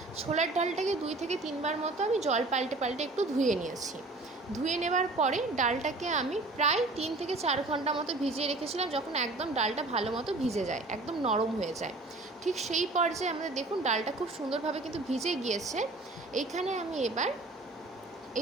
ডালটাকে 2 থেকে 3 বার মতো আমি জল পাল্টে পাল্টে একটু ধুয়ে নিয়েছি। ধুয়ে নেবার পরে ডালটাকে আমি প্রায় 3 থেকে 4 ঘন্টা মতো ভিজিয়ে রেখেছিলাম। যখন একদম ডালটা ভালো মতো ভিজে যায়, একদম নরম হয়ে যায়, ঠিক সেই পর্যায়ে আমাদের দেখুন ডালটা খুব সুন্দরভাবে কিন্তু ভিজে গিয়েছে। এইখানে আমি এবার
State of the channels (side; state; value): left; quieter; 3.1 dB